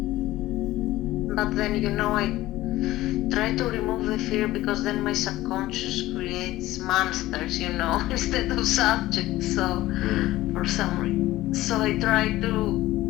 But then, I try to remove the fear because then my subconscious creates monsters, instead of subjects. So, for some reason. So I try to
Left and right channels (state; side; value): quieter; right; 16.5 dB